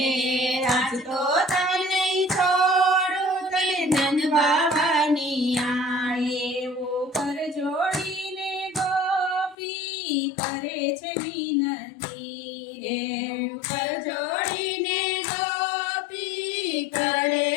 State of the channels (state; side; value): drops out; right; at 9.6 s